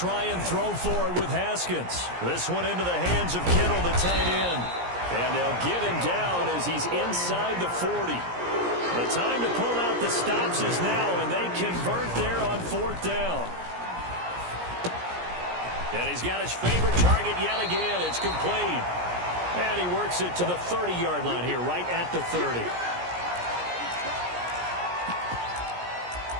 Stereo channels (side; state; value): left; late; 17 ms